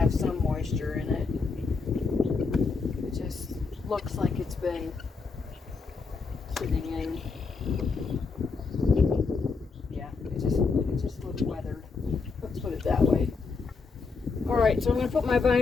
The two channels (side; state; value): right; quieter; 4.5 dB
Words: some moisture in it. It just looks like it's been sitting in. Yeah, it just looks weathered. Let's put it that way. Alright, so I'm going to put my